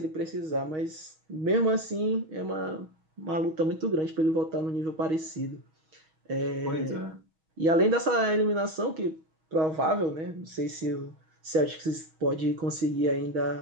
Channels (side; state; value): left; late; 6.3 ms